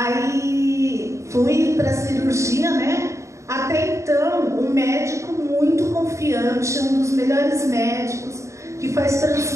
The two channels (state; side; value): late; left; 0.14 ms